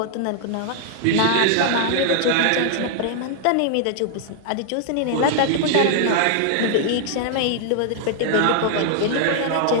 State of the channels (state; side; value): different; both; correlation -0.01